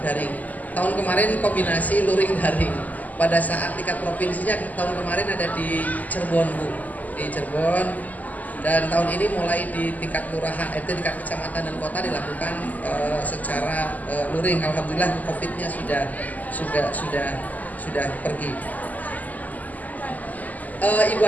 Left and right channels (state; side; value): late; right; 0.079 ms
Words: daring. Tahun kemarin kombinasi luring daring. Pada saat tingkat provinsinya tahun kemarin ada di Cirebon Bu, di Cirebon. Dan tahun ini mulai di tingkat kelurahan, tingkat kecamatan dan kota dilakukan secara luring. Alhamdulillah COVID-nya sudah pergi. Ibu